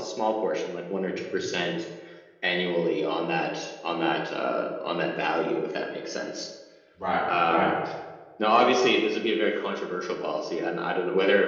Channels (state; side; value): identical; both; correlation 1.00